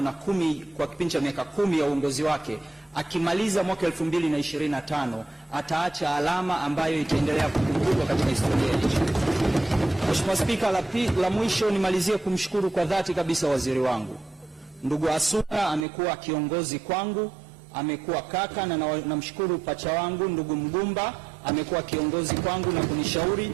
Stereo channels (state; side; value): drops out; left; at 15.9 s